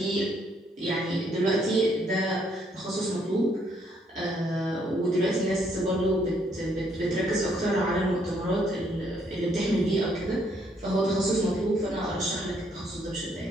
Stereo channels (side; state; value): both; normal; correlation 0.70